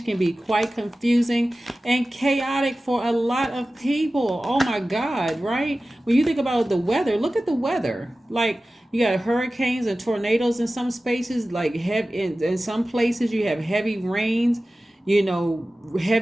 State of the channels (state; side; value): normal; both; correlation 0.96